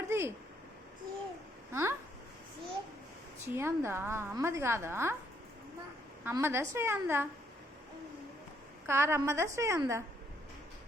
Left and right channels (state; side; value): normal; both; correlation 0.71